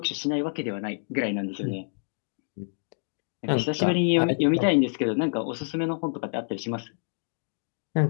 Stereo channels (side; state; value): right; silent; digital silence